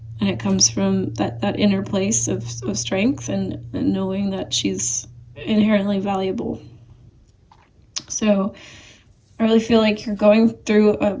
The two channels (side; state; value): both; identical; correlation 1.00